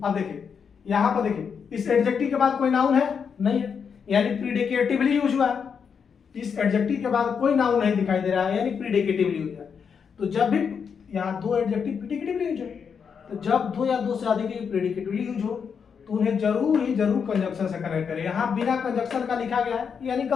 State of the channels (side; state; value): right; quieter; 6.6 dB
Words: अब देखिए यहां पर देखिए इस एडजेक्टिव के बाद कोई नाउन है नहीं है, यानी प्रीडिकेटिवली यूज हुआ है। इस एडजेक्टिव के बाद कोई नाउन नहीं दिखाई दे रहा है, यानी प्रीडिकेटिवली यूज है। तो जब भी यहाँ दो एडजेक्टिव प्रीडिकेटिवली यूज है, तो जब दो या दो से अधिक प्रीडिकेटिवली यूज हो तो उन्हें जरूर ही जरूर कंजक्शन से कनेक्ट करें। यहाँ बिना कंजक्शन का लिखा गया है, यानी